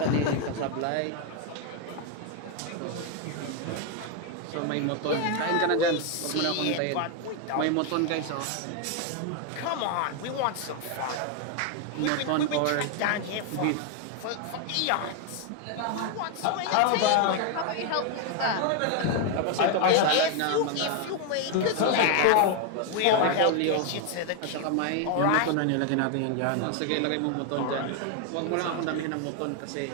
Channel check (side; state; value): both; different; correlation 0.01